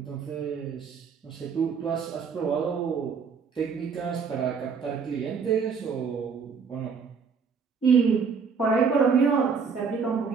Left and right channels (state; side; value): quieter; left; 5.8 dB